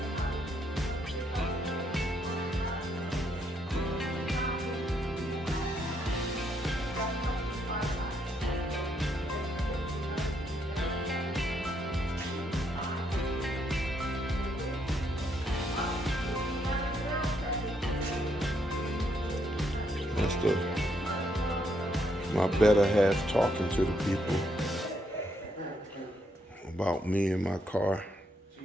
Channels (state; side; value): normal; both; correlation 0.75